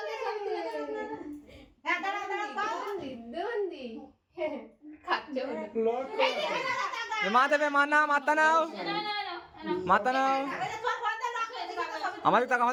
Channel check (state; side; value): identical; both; correlation 1.00